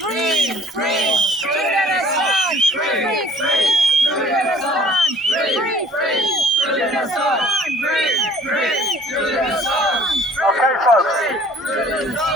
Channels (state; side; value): normal; both; correlation 0.53